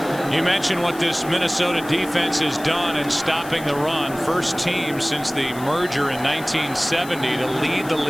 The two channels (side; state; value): left; noise; hiss, 17 dB below the sound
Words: You mentioned what this Minnesota defense has done in stopping the run. First team since the merger in 1970 to lead the